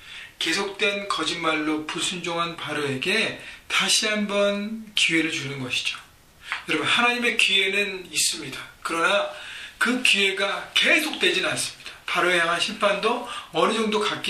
계속된 거짓말로 불순종한 바로에게 다시 한번 기회를 주는 것이죠. 여러분, 하나님의 기회는 있습니다. 그러나 그 기회가 계속되지는 않습니다. 바로에 향한 심판도 어느 정도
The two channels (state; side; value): identical; both; correlation 1.00